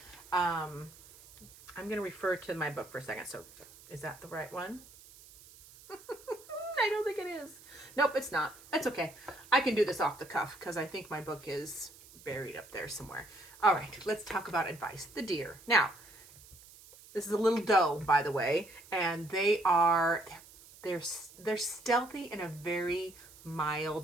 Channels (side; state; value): right; noise; hiss, 21 dB below the sound